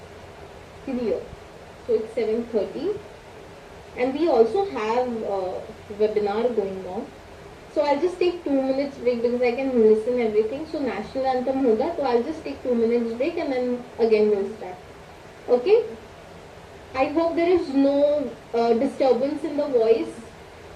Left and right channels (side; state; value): both; identical; correlation 1.00